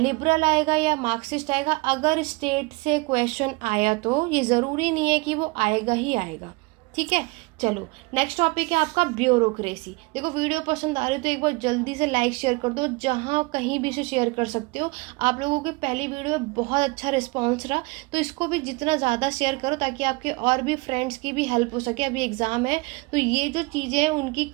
आएगा या मार्क्सिस्ट आएगा। अगर स्टेट से क्वेश्चन आया तो ये ज़रूरी नहीं है कि वो आएगा ही आएगा, ठीक है। चलो नेक्स्ट टॉपिक है आपका ब्यूरोक्रेसी। देखो वीडियो पसंद आ रही है तो एक बार जल्दी से लाइक शेयर कर दो, जहाँ कहीं भी से शेयर कर सकते हो। आप लोगों की पहली वीडियो में बहुत अच्छा रिस्पांस रहा, तो इसको भी जितना ज़्यादा शेयर करो ताकि आपके और भी फ्रेंड्स की भी हेल्प हो सके। अभी एग्ज़ाम है तो ये जो चीज़ें हैं उनकी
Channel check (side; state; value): left; quieter; 26.1 dB